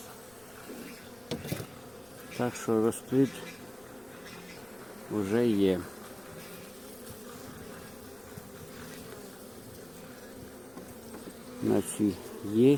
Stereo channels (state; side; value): noise; left; rumble, 27 dB below the sound